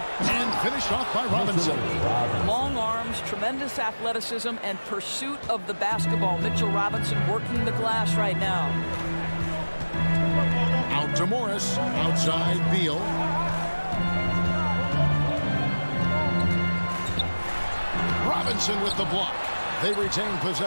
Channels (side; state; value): both; inverted; correlation -1.00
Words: And finished off by Robinson. Long arms, tremendous athleticism, and pursuit of the basketball. Mitchell Robinson working the glass right now. Out to Morris. Outside Beal. Robinson with the block. They retain